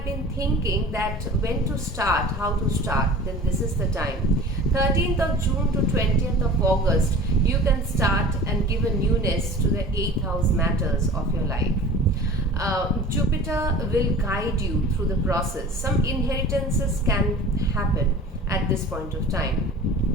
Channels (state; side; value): normal; both; correlation 0.40